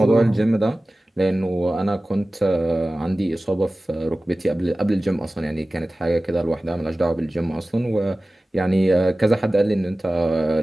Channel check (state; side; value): normal; both; correlation 0.97